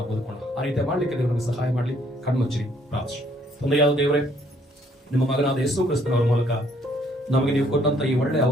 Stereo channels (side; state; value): both; normal; correlation 0.65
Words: ಬದುಕೋಣ. ಆ ರೀತಿ ಮಾಡ್ಲಿಕ್ಕೆ ದೇವರು ನಮಗೆ ಸಹಾಯ ಮಾಡ್ಲಿ. ಕಣ್ಮುಚ್ಚಿರಿ ಪ್ರಾರ್ಥನೆ. ತಂದೆಯಾದ ದೇವರೇ, ನಿಮ್ಮ ಮಗನಾದ ಯೇಸು ಕ್ರಿಸ್ತನವರ ಮೂಲಕ ನಮಗೆ ನೀವು ಕೊಟ್ಟಂತ ಈ ಒಳ್ಳೆಯ